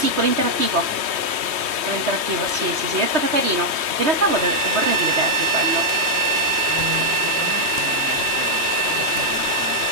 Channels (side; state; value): left; late; 3.2 ms